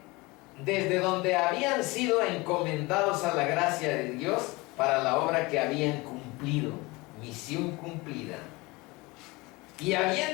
habían sido encomendados a la gracia de Dios para la obra que habían cumplido, misión cumplida. Y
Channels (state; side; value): quieter; right; 23.6 dB